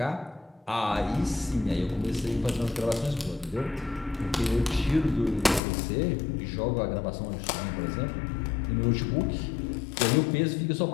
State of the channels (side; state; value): right; drops out; at 5.6 s